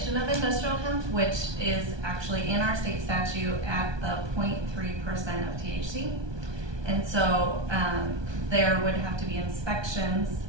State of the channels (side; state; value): left; late; 1.2 ms